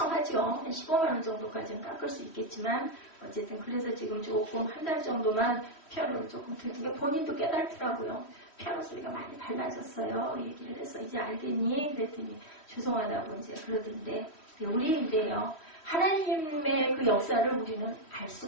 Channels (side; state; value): right; late; 3.1 ms